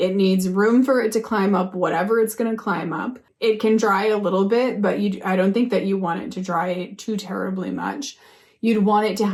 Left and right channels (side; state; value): both; identical; correlation 1.00